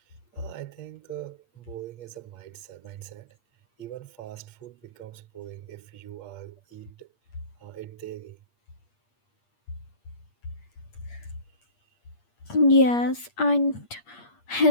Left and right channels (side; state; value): right; late; 8.5 ms